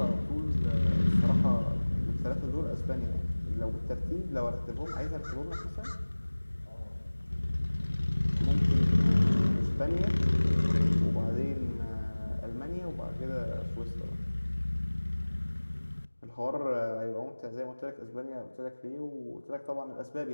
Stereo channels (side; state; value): both; inverted; correlation -1.00